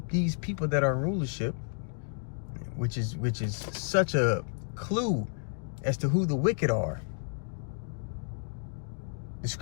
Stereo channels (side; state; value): right; silent; digital silence